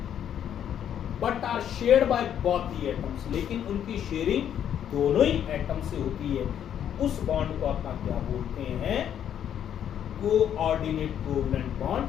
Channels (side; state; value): right; quieter; 9.6 dB